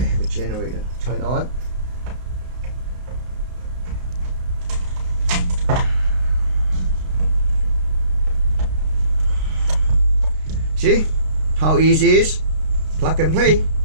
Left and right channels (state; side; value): late; left; 32 ms